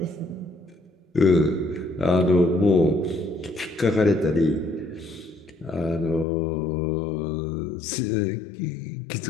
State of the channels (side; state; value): right; drops out; at 6.2 s